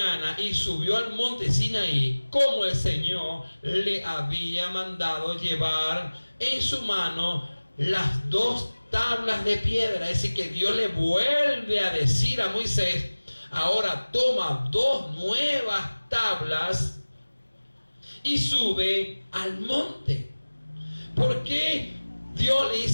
y subió al monte Sinaí, como el Señor le había mandado, llevar en su mano las 2 tablas de piedra. Es decir, que Dios le vuelve a decir a Moisés: ahora toma 2 nuevas tablas y sube al monte. ¿Por qué Dios le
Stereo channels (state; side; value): inverted; both; correlation -1.00